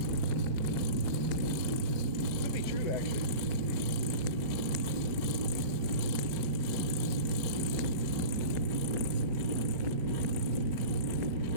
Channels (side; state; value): left; late; 6.1 ms